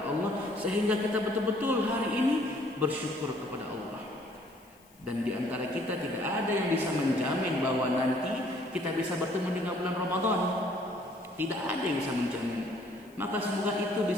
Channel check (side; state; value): left; noise; hiss, 29 dB below the sound